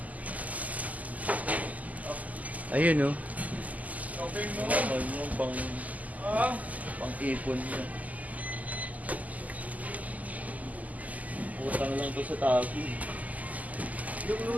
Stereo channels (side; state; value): left; late; 0.077 ms